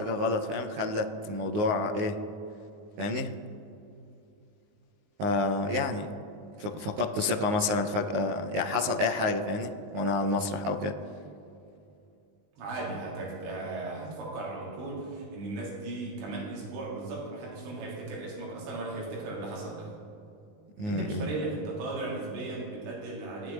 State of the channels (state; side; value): late; left; 20 ms